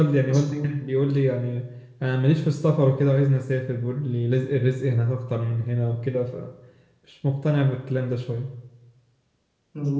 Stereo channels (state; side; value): identical; both; correlation 1.00